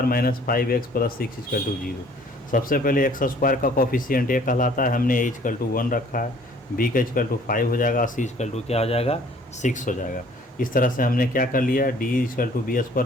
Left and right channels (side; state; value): both; normal; correlation 0.56